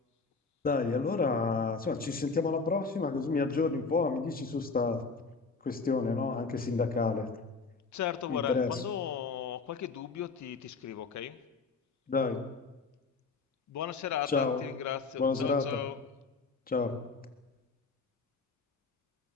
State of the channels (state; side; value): quieter; right; 4.4 dB